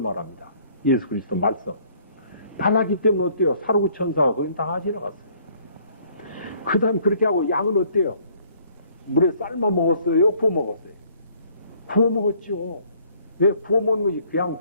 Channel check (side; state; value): both; inverted; correlation -0.61